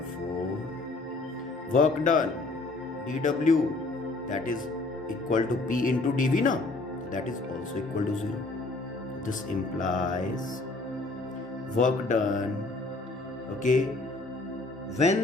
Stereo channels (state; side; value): quieter; right; 3.2 dB